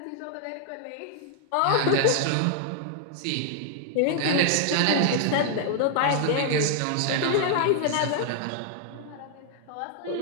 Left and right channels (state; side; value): different; both; correlation -0.01